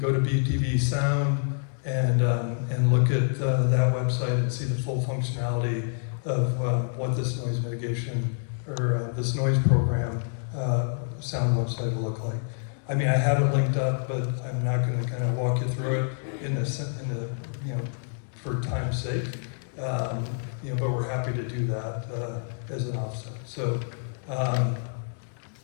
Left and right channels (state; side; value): silent; right; 60 dB below the other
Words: to BTV Sound and look at that website and see the full functionality of what this noise mitigation or this noise program sound website will look like. I mean, I have it linked up, but I'm not going to kind of walk you through it for time's sake. But we're happy to do that as an offset. So, and